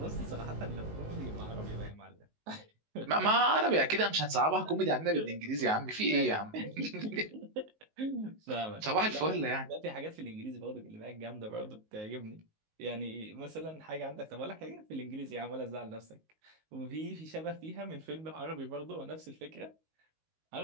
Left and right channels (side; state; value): left; late; 19 ms